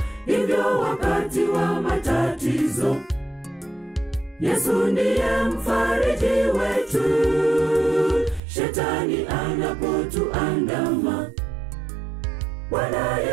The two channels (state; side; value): drops out; left; at 8.4 s